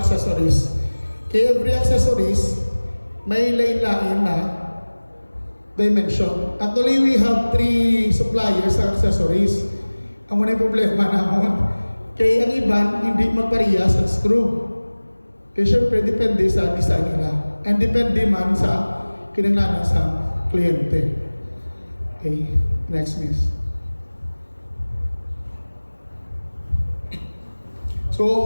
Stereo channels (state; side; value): inverted; both; correlation -1.00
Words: accessories. Kaya every accessories, may lain-lain na dimension. Actually, we have 3 suppliers sa accessories. Ang muna yung problema naman. Kaya ang iban, hindi magparehas ang screw. Kaya syempre, depende sa design nila. And depende man sa kinanglanan sa kliyente. Okay, next miss.